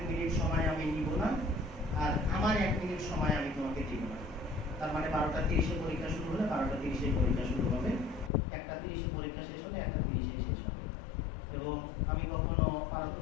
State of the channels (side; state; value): right; drops out; at 8.3 s